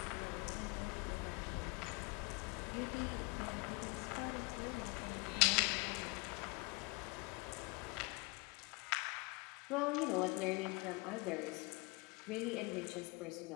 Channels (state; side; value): quieter; right; 27.0 dB